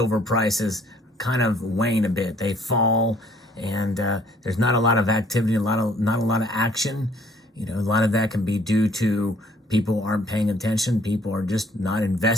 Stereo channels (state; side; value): normal; both; correlation 0.60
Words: prices kind of wane a bit. They fall, and there's not a lot of activity, not a lot of action. You know, a lot of that can be due to people aren't paying attention. People are just not